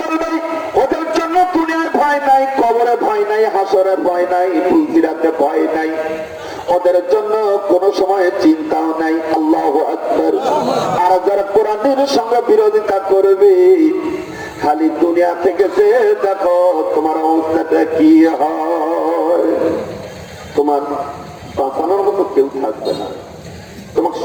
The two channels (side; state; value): both; identical; correlation 1.00